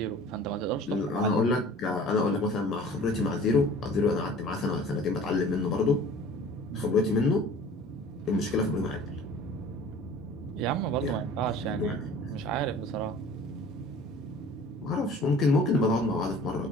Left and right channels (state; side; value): normal; both; correlation 0.46